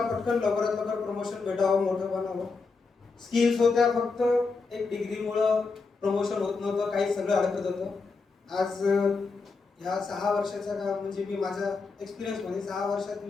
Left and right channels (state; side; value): quieter; right; 4.4 dB